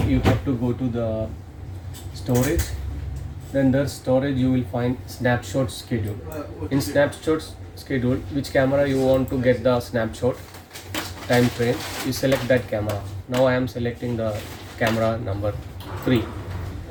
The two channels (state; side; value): identical; both; correlation 1.00